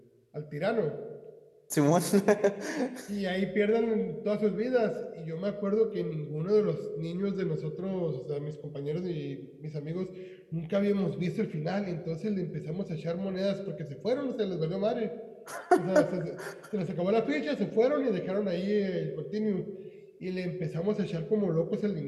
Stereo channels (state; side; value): identical; both; correlation 1.00